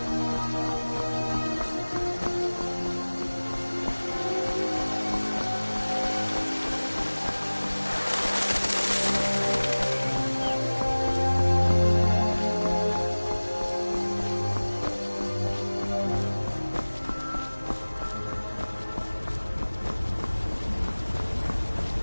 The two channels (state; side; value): inverted; both; correlation -1.00